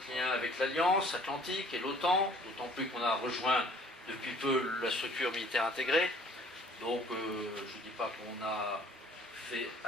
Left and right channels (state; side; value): normal; both; correlation 0.55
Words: lien avec l'Alliance Atlantique et l'OTAN, d'autant plus qu'on a rejoint depuis peu la structure militaire intégrée. Donc, je ne dis pas qu'on a fait